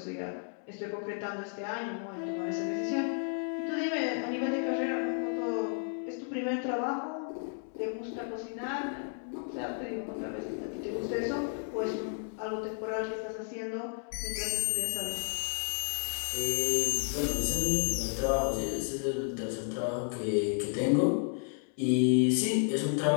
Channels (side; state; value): right; silent; 56 dB below the other